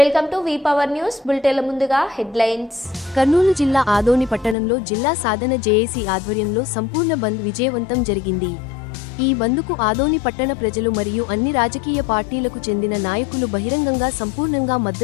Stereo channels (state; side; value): drops out; right; at 4.5 s